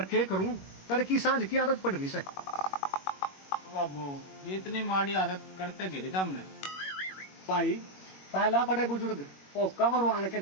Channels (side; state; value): right; late; 21 ms